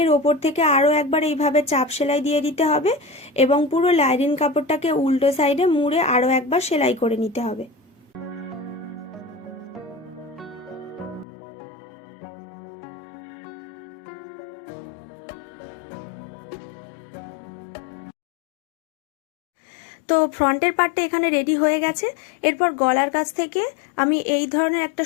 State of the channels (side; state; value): right; drops out; at 11.2 s